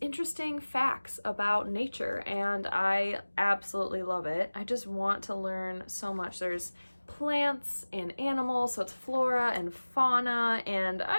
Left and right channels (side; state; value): both; inverted; correlation -1.00